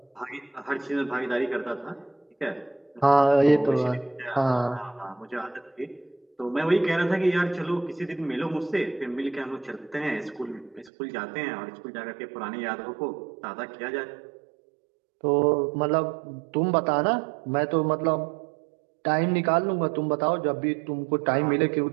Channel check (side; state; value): left; drops out; at 10.9 s